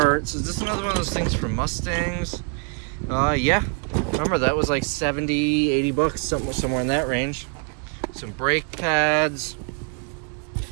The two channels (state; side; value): quieter; left; 36.6 dB